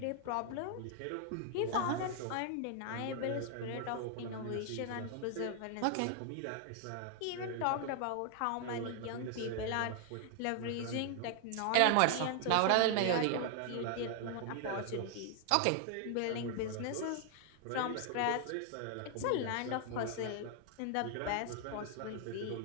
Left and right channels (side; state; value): both; different; correlation 0.00